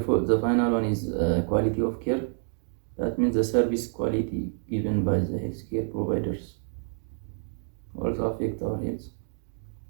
final one is quality of care. That means the service quality given by the healthcare providers also affect our health.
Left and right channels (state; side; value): silent; left; 59 dB below the other